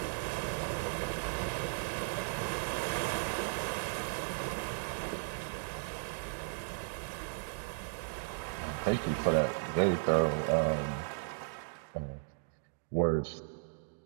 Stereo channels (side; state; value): left; silent; digital silence